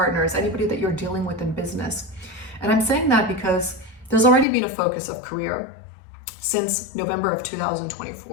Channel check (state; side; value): drops out; right; at 4.5 s